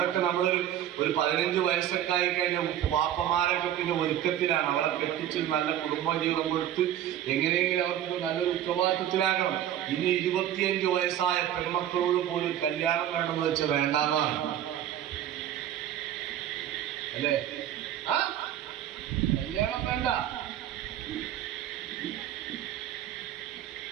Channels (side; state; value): left; quieter; 11.3 dB